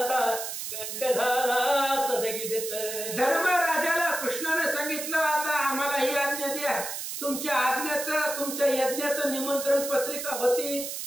कंठ झाला सदगीत. धर्मराजाला कृष्णाने सांगितलं आता आम्हाला ही आज्ञा द्या, तुमच्या आज्ञाचं तुमच्या यज्ञाचं निमंत्रण पत्रिका होती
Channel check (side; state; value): right; noise; hiss, 6 dB below the sound